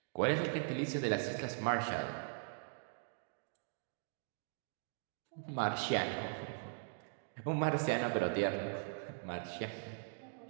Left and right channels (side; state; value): left; silent; digital silence